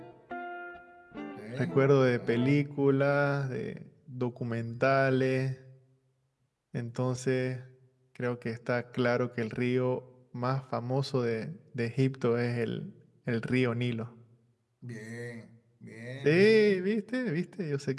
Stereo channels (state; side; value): identical; both; correlation 1.00